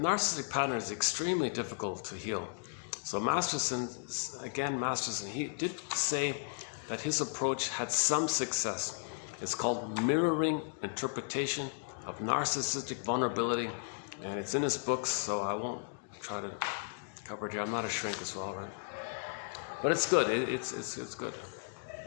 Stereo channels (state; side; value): silent; right; digital silence